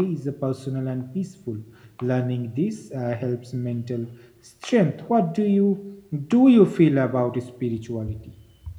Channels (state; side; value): identical; both; correlation 1.00